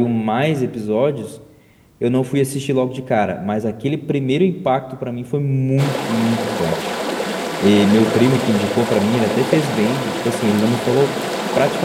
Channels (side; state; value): both; identical; correlation 1.00